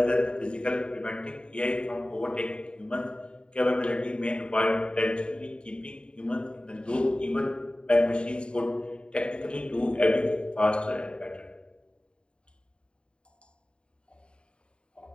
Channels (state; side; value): late; right; 0.052 ms